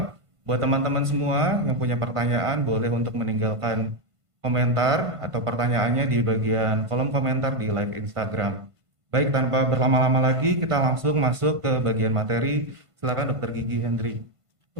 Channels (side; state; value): left; late; 1.5 ms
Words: buat teman-teman semua yang punya pertanyaan boleh untuk meninggalkan komentar atau pertanyaannya di bagian kolom komentar di live Instagram. Baik, tanpa berlama-lama lagi, kita langsung masuk ke bagian materi. Silakan Dr. Gigi Hendry.